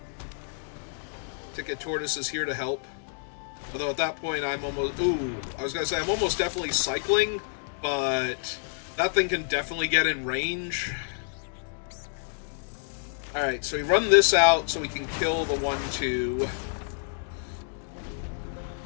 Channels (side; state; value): right; silent; digital silence